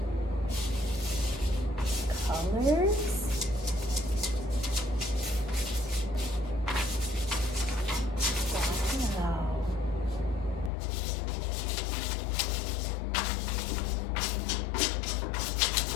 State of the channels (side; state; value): right; drops out; at 10.7 s